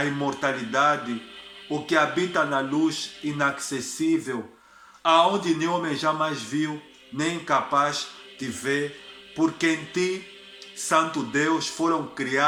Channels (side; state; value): both; identical; correlation 1.00